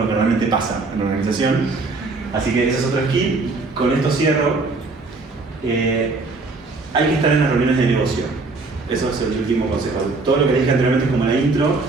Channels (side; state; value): left; quieter; 3.7 dB